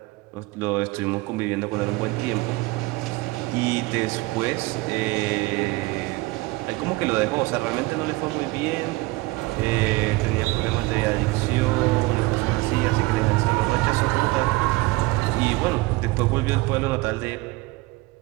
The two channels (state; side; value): quieter; left; 22.0 dB